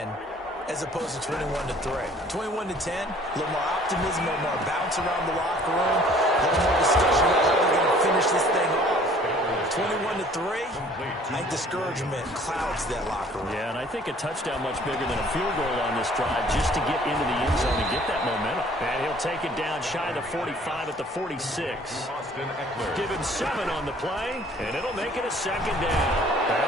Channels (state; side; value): normal; both; correlation 0.54